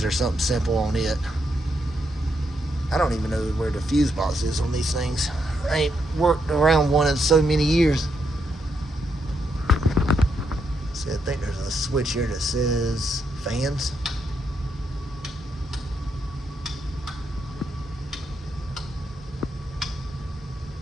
or something simple on it. I don't even know where the fuse box is on these things. I ain't worked around one in so many years. See, I think there's a switch here that says fans.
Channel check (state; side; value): normal; both; correlation 0.79